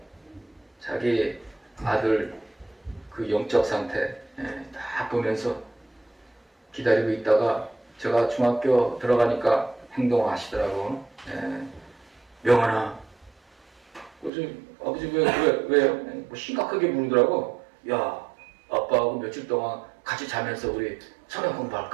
자기 아들 그 영적 상태 딱 보면서 기다리고 있다가 제가 중학교 들어가니까 행동을 하시더라고. 명환아. 그래서 아버지 왜요? 심각하게 물으더라고. 야 아빠하고 며칠 동안 같이 자면서 우리 성경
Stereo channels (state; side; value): drops out; left; at 14.3 s